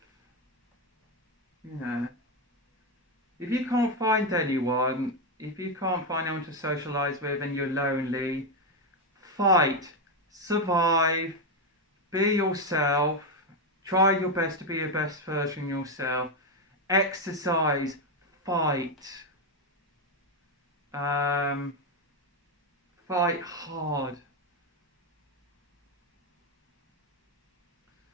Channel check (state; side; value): normal; both; correlation 0.07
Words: If you can't find anyone, if you can't find anyone to socialise with and you're lonely, fight, survive, be yourself, try your best to be your best version of yourself, exercise, fight, fight hard.